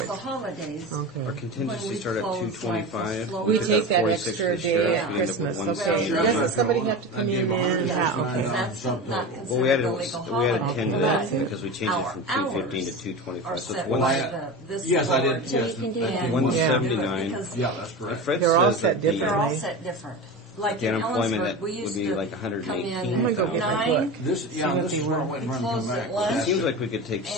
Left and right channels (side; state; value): both; normal; correlation 0.27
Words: the courts. holidays. Okay. Our When contingency we start at close, like, 225. the We slower- take that 46 extra for the day sheriff, at and Christmas. then Okay. Well, Doesn't somebody have to come I'd in give then? 100 Yeah, $9 okay. That's something. not Well, we considered added, a legal we added holiday. 10 to That's that it. because we changed it Our from 215 to hours 225. are So set it's Well, by I- this yes, I board. did. So Yes, you can do I that. did. 179. Because Yeah, that's correct. Fred They're all says set that the- they're all differently. set different. Like The in unemployment Ellensburg, that we would used be to like come 118. in I'm gonna go get my book. This, See yeah, what this they is where I want. went and We run and come closed back. at with lunch. that. Seems like we could take And-